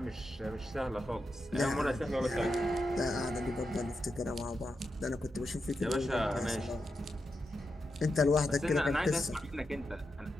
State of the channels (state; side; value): normal; both; correlation 0.87